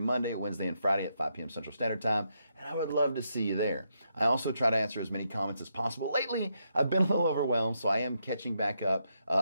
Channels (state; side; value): inverted; both; correlation -0.80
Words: Wednesday, and Friday at 5 p.m. Central Standard Time, and I would love to see you there. I also try to answer as many comments as possible. Lately, I've been a little overwhelmed, so I am catching back up